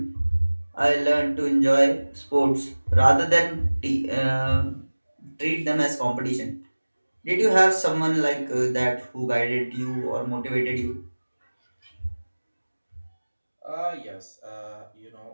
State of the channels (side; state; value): both; inverted; correlation -1.00